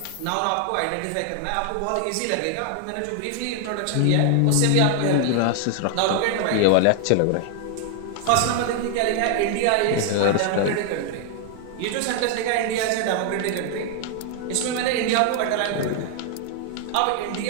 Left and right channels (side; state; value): both; different; correlation 0.00